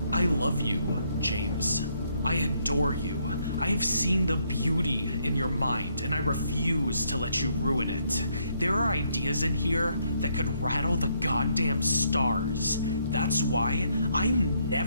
I love you, James. I adore you. I have seen the beauty in your mind, and I refuse to let you ruin it. There are ideas in here that could rattle the goddamn stars. That's why I'm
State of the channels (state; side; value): inverted; both; correlation -0.72